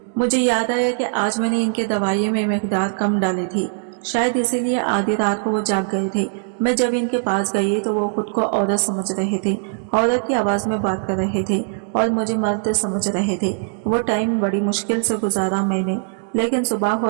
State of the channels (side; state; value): left; silent; digital silence